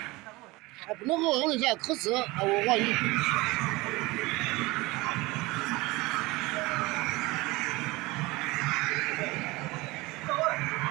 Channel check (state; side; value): quieter; left; 22.1 dB